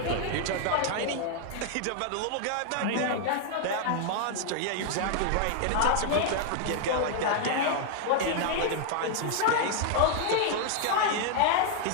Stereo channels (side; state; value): both; different; correlation 0.00